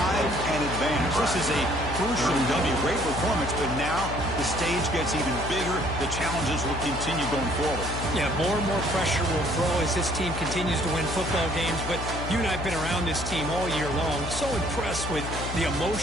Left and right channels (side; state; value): left; noise; hum, 6 dB below the sound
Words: and advance. This is a crucial W. Great performance, but now the stage gets even bigger. The challenges will continue going forward. Yeah, more and more pressure will grow as this team continues to win football games, but you and I have been around this team all year long. So impressed with the